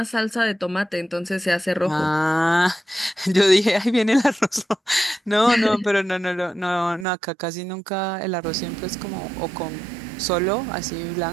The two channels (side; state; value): left; drops out; at 7.1 s